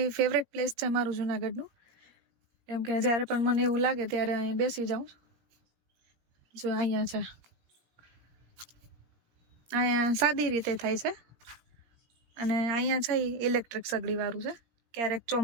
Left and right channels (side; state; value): left; late; 17 ms